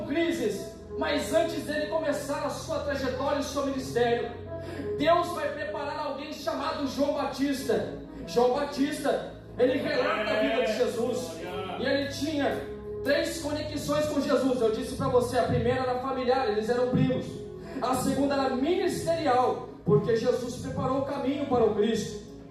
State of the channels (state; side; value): identical; both; correlation 1.00